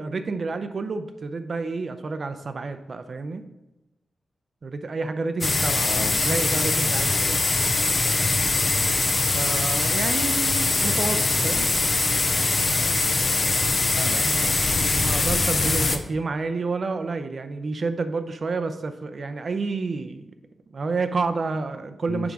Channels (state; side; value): normal; both; correlation 0.92